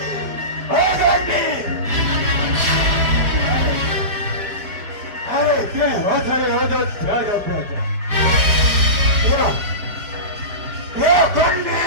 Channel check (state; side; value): late; left; 4.9 ms